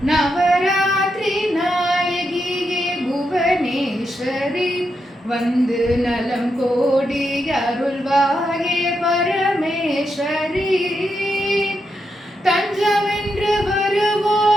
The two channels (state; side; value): normal; both; correlation 0.84